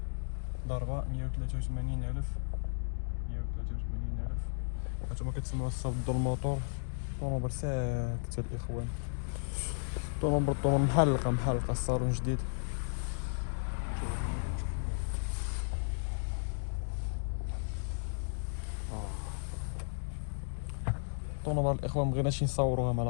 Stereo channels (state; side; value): silent; right; digital silence